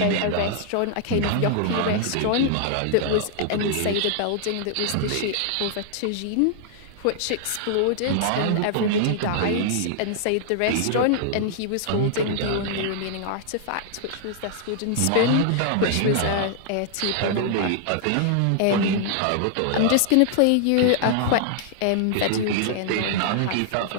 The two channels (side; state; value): both; different; correlation -0.01